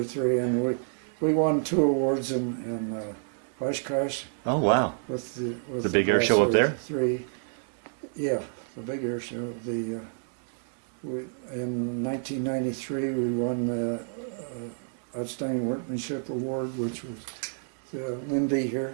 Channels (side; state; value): left; silent; digital silence